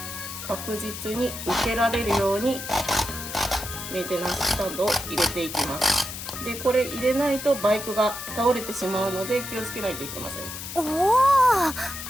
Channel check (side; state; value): left; noise; hiss, 9 dB below the sound